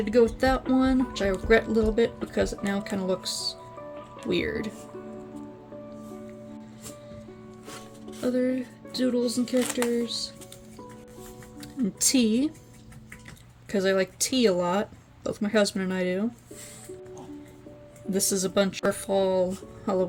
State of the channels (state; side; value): identical; both; correlation 1.00